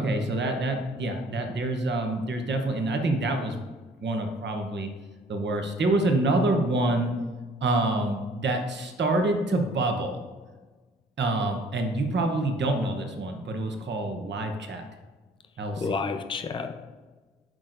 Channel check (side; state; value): both; normal; correlation 0.55